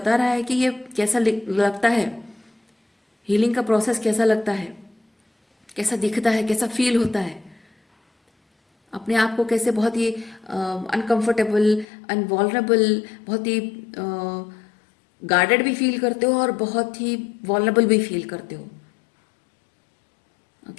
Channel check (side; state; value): right; drops out; at 11.9 s